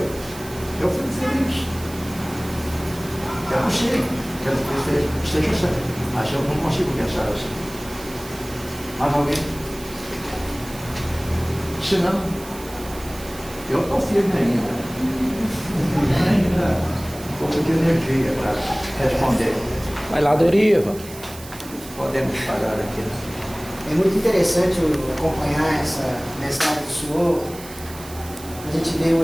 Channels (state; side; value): noise; right; hiss, 16 dB below the sound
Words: fico feliz. Eu não sei, quero que esteja certo, mas eu não consigo pensar assim. Mas alguém? Se não, eu estou firme ainda. Um pouco de energia para responder. Vai lá, Doriva. Podemos parar aqui. É muito interessante acompanhar essa mensagem do Senhor. A gente vê o